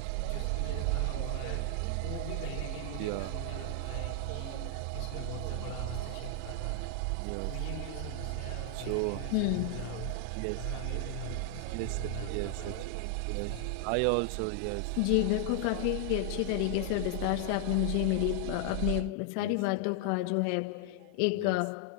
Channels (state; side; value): different; both; correlation 0.00